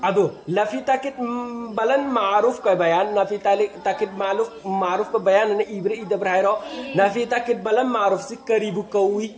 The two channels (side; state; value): both; identical; correlation 1.00